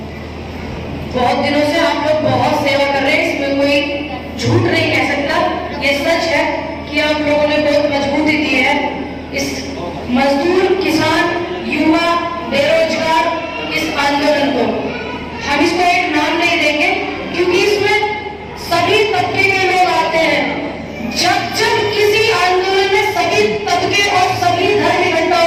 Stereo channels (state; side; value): identical; both; correlation 1.00